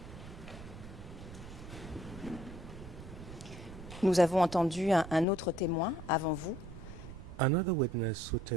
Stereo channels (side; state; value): right; noise; rumble, 14 dB below the sound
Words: Nous avons entendu un autre témoin avant vous. Another witness who